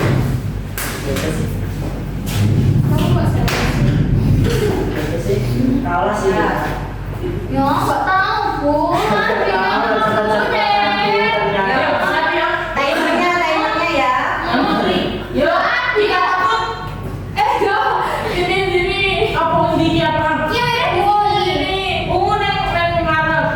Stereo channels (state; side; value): identical; both; correlation 1.00